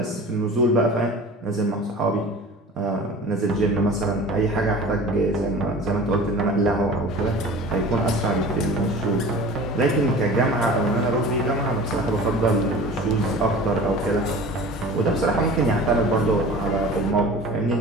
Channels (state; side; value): normal; both; correlation 0.40